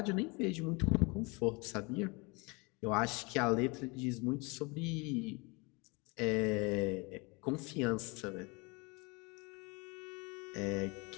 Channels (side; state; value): right; quieter; 28.3 dB